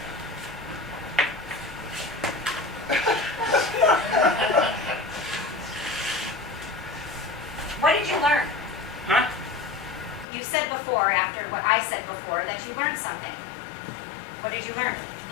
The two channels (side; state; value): right; drops out; at 10.2 s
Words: What did you learn? Huh? You said before, after what I said before, that you learned something. What did you learn?